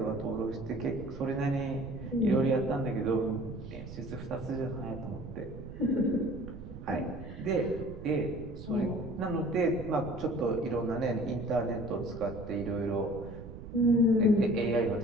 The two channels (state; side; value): noise; right; rumble, 12 dB below the sound